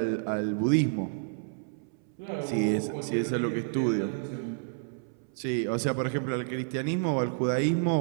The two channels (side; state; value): left; silent; 58 dB below the other